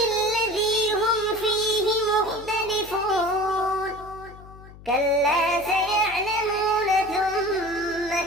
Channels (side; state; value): left; noise; hum, 19 dB below the sound